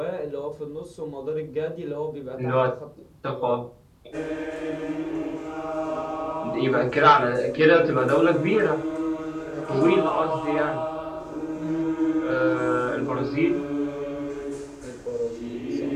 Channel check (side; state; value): both; identical; correlation 1.00